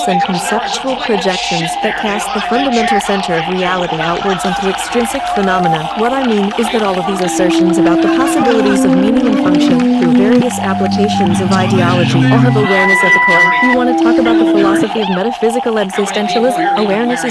and conceptual projections that cast the fundamental center of reality outwards onto extrinsic phenomena. What I mean is that all of these assertions about the possibilities of meaning and function through various applications of ideology all have awareness at the core. You want to talk about the philosophy of metaphysical existentialism? Awareness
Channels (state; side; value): identical; both; correlation 1.00